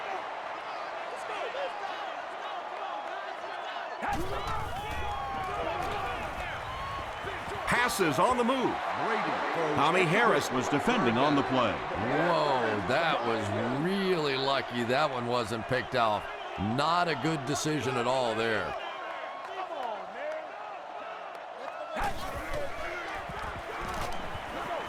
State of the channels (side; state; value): both; identical; correlation 1.00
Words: Passes on the move. Tommy Harris was defending on the play. Whoa, that was really lucky that one wasn't picked off. Not a good decision at all there.